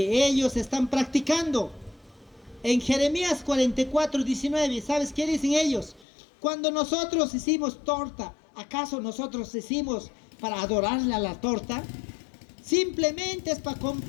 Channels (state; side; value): drops out; right; at 6.1 s